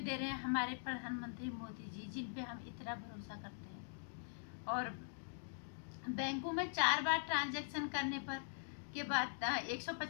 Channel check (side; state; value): right; silent; digital silence